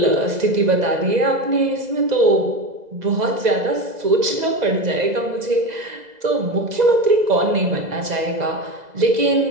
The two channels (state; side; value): late; left; 2.0 ms